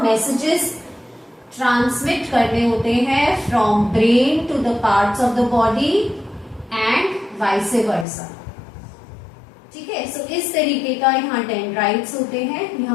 मैसेजेस ट्रांसमिट करने होते हैं from brain to the parts of the body and vice versa. ठीक है, सो इस तरीके का यहाँ डेंड्राइट्स होते हैं, ये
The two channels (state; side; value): drops out; right; at 8.1 s